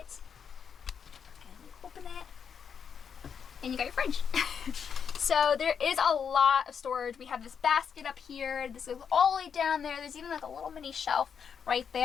and you open it and you got your fridge. So there is a lot of storage. We have this basket up here. This goes all the way down there. There's even like a little mini shelf right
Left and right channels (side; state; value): right; quieter; 7.1 dB